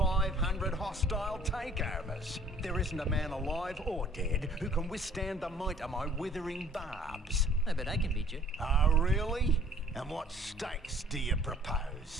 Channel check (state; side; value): normal; both; correlation 0.54